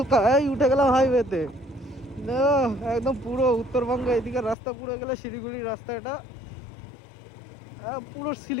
এই উঠে গেলাম হাইওয়েতে, একদম পুরো উত্তরবঙ্গে এদিকে রাস্তা, পুরো গেলে শিলিগুড়ির রাস্তা, এটা পুরো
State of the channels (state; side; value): drops out; right; at 4.5 s